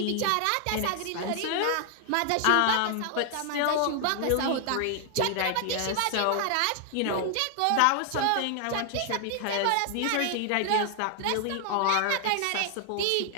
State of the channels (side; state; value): both; different; correlation 0.00